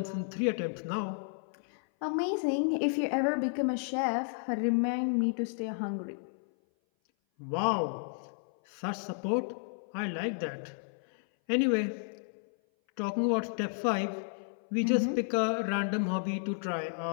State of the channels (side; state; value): right; silent; 56 dB below the other